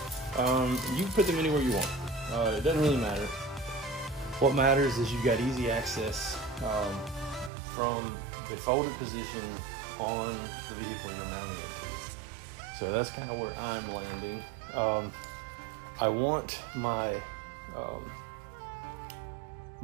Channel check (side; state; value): left; drops out; at 7.5 s